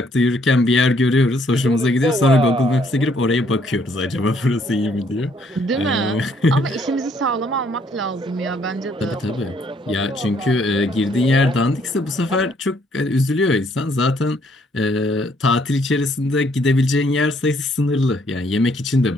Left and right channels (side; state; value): both; normal; correlation 0.67